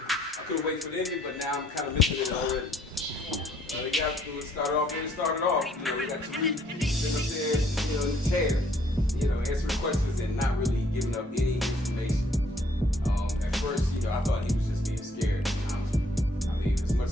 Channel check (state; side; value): normal; both; correlation 0.64